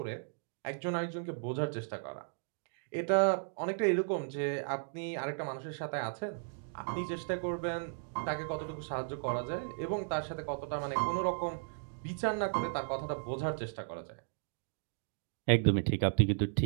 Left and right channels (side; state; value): left; silent; digital silence